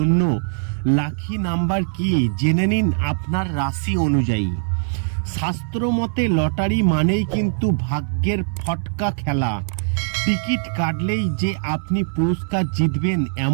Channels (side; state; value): left; silent; 59 dB below the other